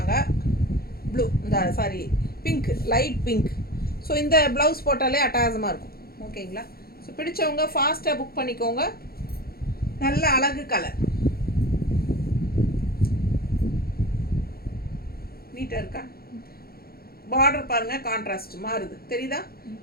ப்ளூ, இந்த sorry pink, light pink. So இந்த ப்ளவுஸ் போட்டாலே அட்டகாசமாக இருக்கும். ஓகேங்களா? ஸோ பிடிச்சவங்க ஃபாஸ்ட்டாக புக் பண்ணிக்கோங்க. நல்ல அழகு கலர். நீட்டாக இருக்கா? பார்டர் பாருங்கள், கான்ட்ராஸ்ட் மாறுது தெரியுதா?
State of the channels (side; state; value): right; late; 0.44 ms